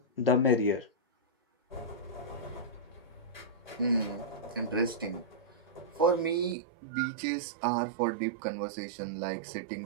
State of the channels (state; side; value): drops out; left; at 6.6 s